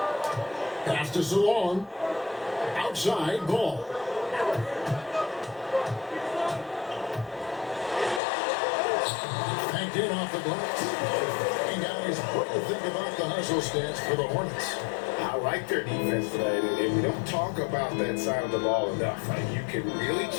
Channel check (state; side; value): drops out; right; at 8.2 s